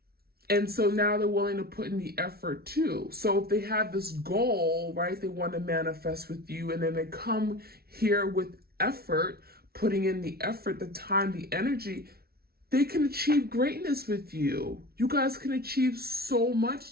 And so now they're willing to put in the effort too. So if they have this goal, right, they want to manifest with you, and then they come here with effort, putting in the effort, the time, the energy, they can achieve greatness with you. You guys can achieve so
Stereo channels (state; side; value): late; left; 0.45 ms